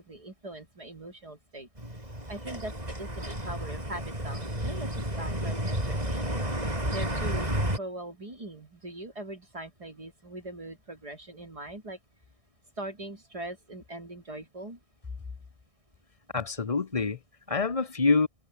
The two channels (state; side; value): late; left; 1.6 ms